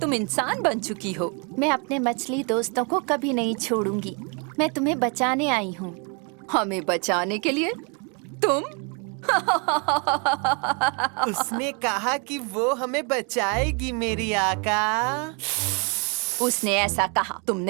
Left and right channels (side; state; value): left; quieter; 33.9 dB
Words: इंसान बन चुकी हो। मैं अपने मछली दोस्तों को कभी नहीं छोड़ूंगी। मैं तुम्हें बचाने आई हूँ। हमें बचाने के लिए? तुम? उसने कहा कि वो हमें बचाएगी मेरी आका। उसने ऐसा कहा?